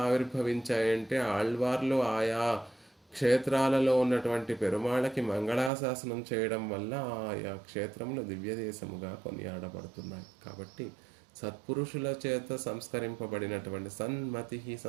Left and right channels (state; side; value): drops out; left; at 5.7 s